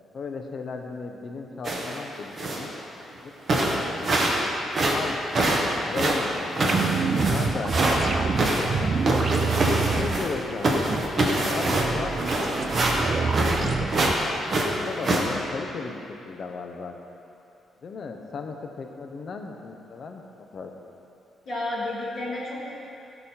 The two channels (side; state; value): both; normal; correlation 0.79